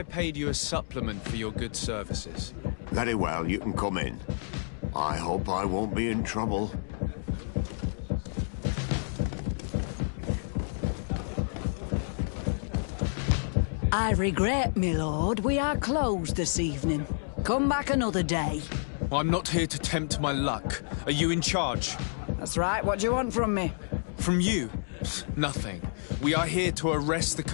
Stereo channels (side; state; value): right; silent; digital silence